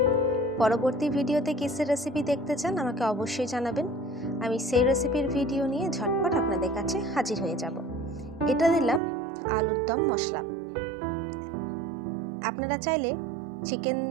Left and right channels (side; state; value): left; drops out; at 9.0 s